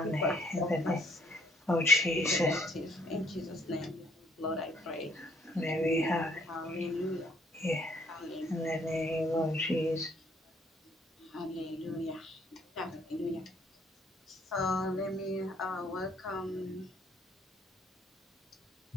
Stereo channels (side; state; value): both; normal; correlation 0.65